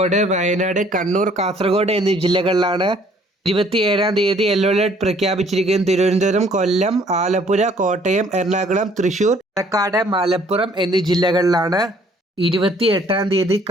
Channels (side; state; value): both; normal; correlation 0.60